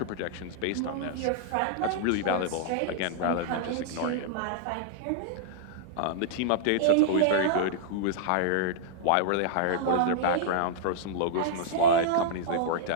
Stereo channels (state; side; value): different; both; correlation -0.01